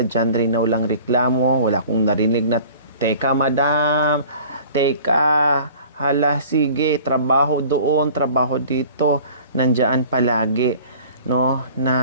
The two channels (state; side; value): inverted; both; correlation -0.46